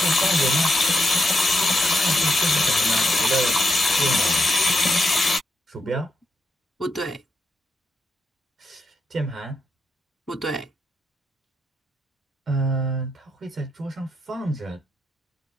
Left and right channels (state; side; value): normal; both; correlation 0.83